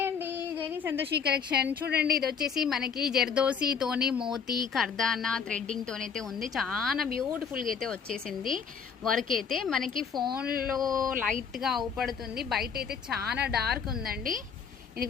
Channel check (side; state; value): right; quieter; 6.5 dB